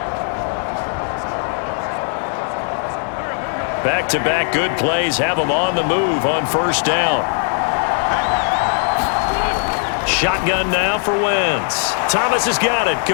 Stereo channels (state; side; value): silent; right; 55 dB below the other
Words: Back-to-back good plays have them on the move on first down. Shotgun now for Wentz. Thomas has got it,